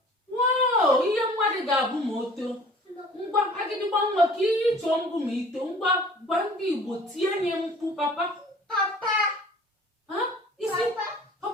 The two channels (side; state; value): both; normal; correlation 0.49